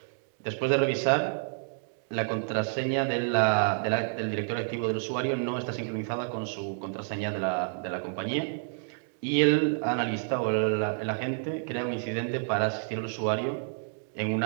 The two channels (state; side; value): silent; left; digital silence